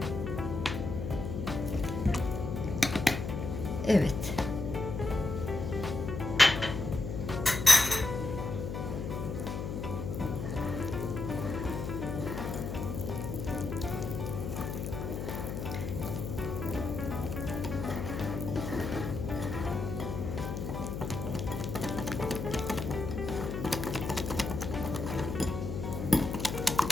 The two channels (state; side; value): noise; left; hum, 4 dB below the sound